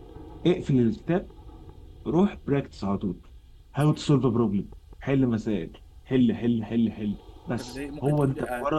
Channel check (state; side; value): identical; both; correlation 1.00